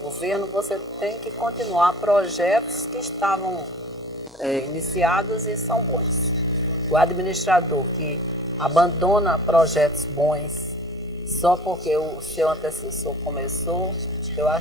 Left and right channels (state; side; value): noise; left; hum, 29 dB below the sound